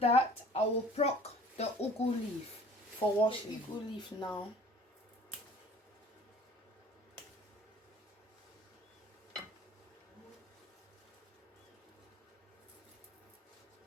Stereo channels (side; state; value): both; normal; correlation 0.49